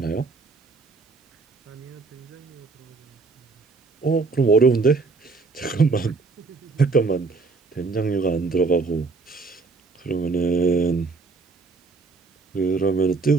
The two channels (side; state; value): left; quieter; 4.1 dB